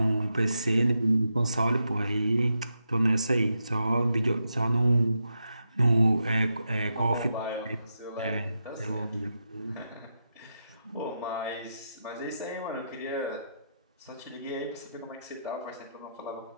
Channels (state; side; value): inverted; both; correlation -0.86